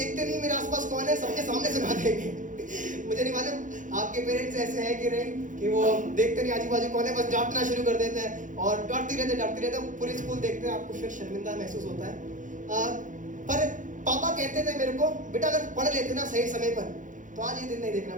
नहीं मेरे आसपास कौन है, सबके सामने सुना देंगे। मुझे नहीं मालूम आपके पेरेंट्स ऐसे हैं कि नहीं, कि वो देखते नहीं आजू बाजू कौन है, बस डांटना शुरू कर देते हैं और डांटते रहते पूरी स्कूल देखते हैं, आपको फिर शर्मिंदा महसूस होता है। पर पापा कहते थे मेरे को बेटा अगर पढ़ लेते ना सही समय पर तो आज ये दिन नहीं देखना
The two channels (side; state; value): left; late; 0.37 ms